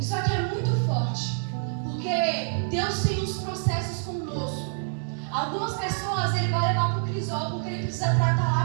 aqui é muito forte, porque Deus tem uns processos conosco. Algumas pessoas Ele vai levar para o crisol porque Ele precisa tratar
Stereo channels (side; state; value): left; silent; digital silence